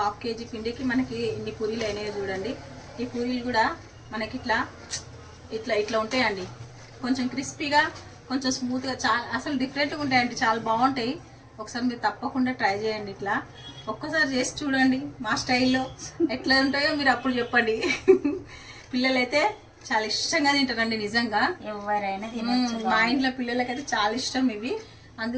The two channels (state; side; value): identical; both; correlation 1.00